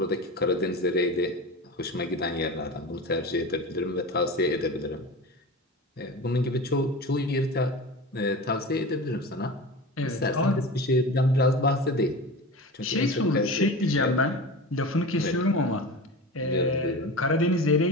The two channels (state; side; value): normal; both; correlation 0.30